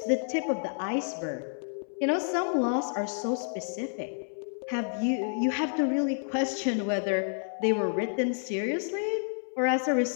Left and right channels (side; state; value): right; silent; 58 dB below the other